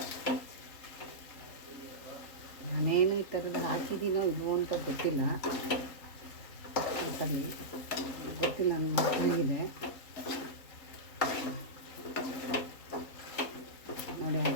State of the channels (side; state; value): right; late; 3.7 ms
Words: ನಾನೇನು ಈ ಥರದ್ದು ಹಾಕಿದ್ದೀನೋ ಇಲ್ವೋ ಅಂತ ಗೊತ್ತಿಲ್ಲ. ಸರಿ, ಗೊತ್ತಿಲ್ಲ, ನನ್ನ ಮಕ್ಕಳಿಗಿದೆ. ನೋಡಿ,